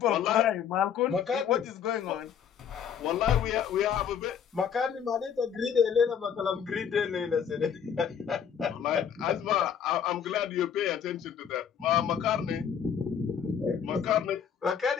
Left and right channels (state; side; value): quieter; right; 7.9 dB